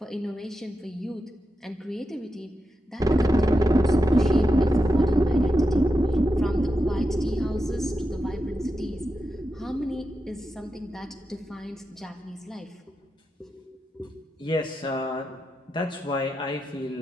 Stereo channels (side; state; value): both; normal; correlation 0.88